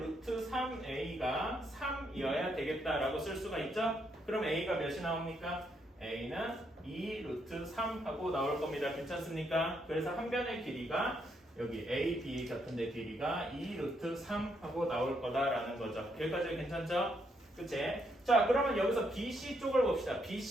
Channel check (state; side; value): normal; both; correlation 0.76